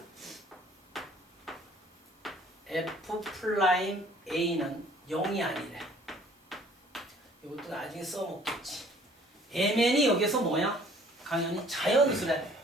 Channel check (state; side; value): normal; both; correlation 0.56